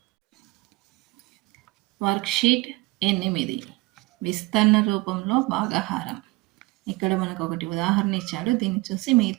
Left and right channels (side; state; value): left; quieter; 22.6 dB